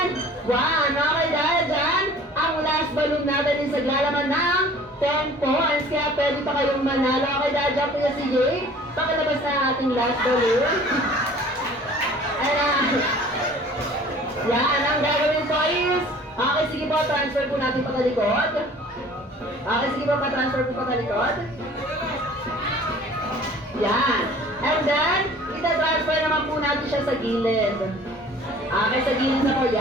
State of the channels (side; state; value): both; normal; correlation 0.48